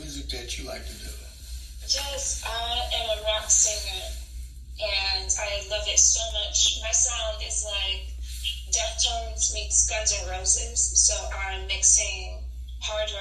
that you like to do. Yes, I am a rock singer, and I love it so much. My sound is like Deftones meets Guns N' Roses, so I'm mixing hard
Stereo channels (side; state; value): both; identical; correlation 1.00